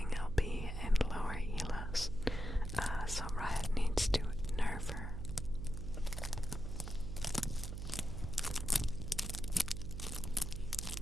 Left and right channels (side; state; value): right; noise; hum, 5 dB below the sound